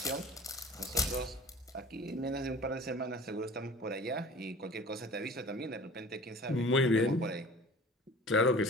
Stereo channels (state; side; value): normal; both; correlation 0.42